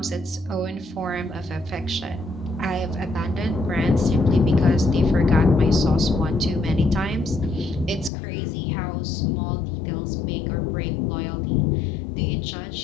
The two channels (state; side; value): drops out; right; at 8.1 s